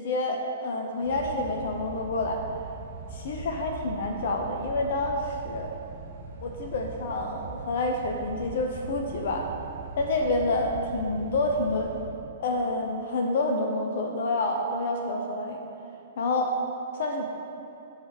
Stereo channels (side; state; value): both; inverted; correlation -0.42